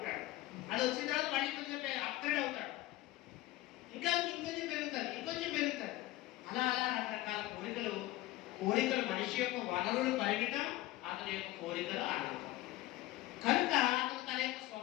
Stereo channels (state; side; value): quieter; right; 16.9 dB